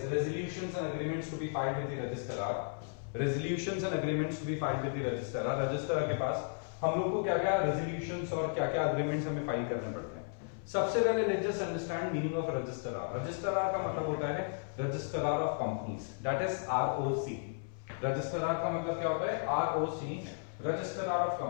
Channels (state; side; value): silent; right; 55 dB below the other